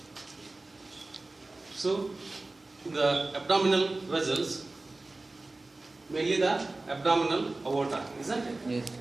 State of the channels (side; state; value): left; quieter; 3.1 dB